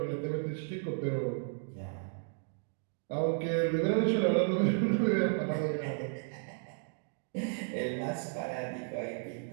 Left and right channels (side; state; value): left; silent; digital silence